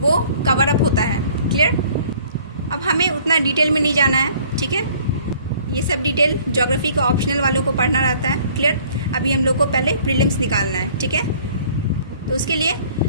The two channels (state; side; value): inverted; both; correlation -0.55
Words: कवर अप होता है। क्लियर? अब हमें उतना डिटेल में नहीं जाना है, ठीक है, ये सब डिटेल ज्योग्राफी का ऑप्शनल वालों को पढ़ना रहता है। क्लियर? अभी हम लोग को पहले प्रीलिम्स निकालना है, ठीक है। तो उसके लिए